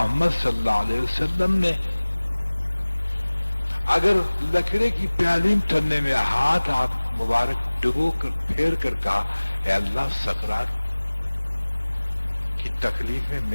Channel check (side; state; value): both; inverted; correlation -1.00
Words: صلی اللہ علیہ وسلم نے اگر لکڑے کی پیالی تھرنے میں ہاتھ مبارک ڈبو کر پھیر کر کہا اے اللہ سکرات کی تکلیف میں